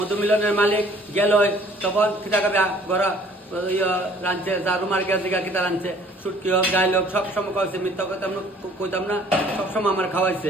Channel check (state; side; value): normal; both; correlation 0.55